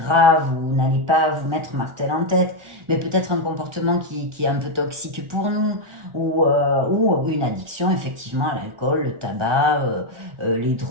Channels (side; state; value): left; late; 1.4 ms